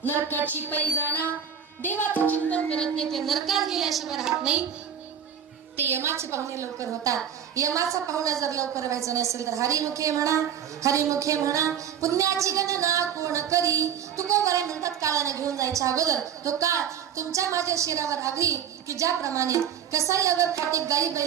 नरकाची पैजाणा देवाचं चिंतन करत नाही ते नरकात गेल्याशिवाय राहत नाही ते यमाचे पाहुणे लवकर होतात यमाचा पाहुणा जर लवकर व्हायचा नसेल तर हरिमुखे म्हणा पुण्याची गणना कोण करी तुकोबाराय म्हणतात काळाने घेऊन जायच्या अगोदर तो काळ तुमच्या माझ्या शिरावर आधी की ज्याप्रमाणे कसाई अगर खाटे गाई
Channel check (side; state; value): left; quieter; 8.5 dB